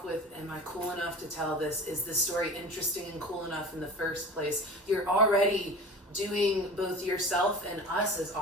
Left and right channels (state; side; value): normal; both; correlation 0.36